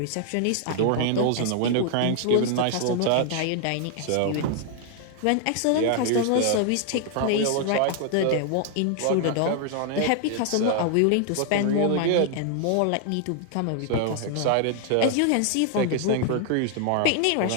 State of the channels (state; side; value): different; both; correlation 0.00